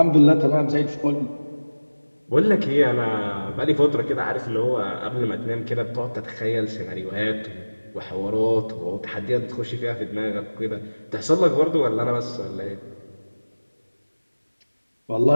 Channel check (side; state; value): both; inverted; correlation -1.00